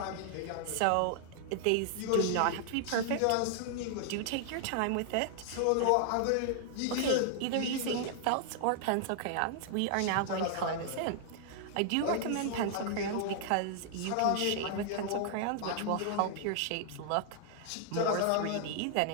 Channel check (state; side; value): different; both; correlation 0.00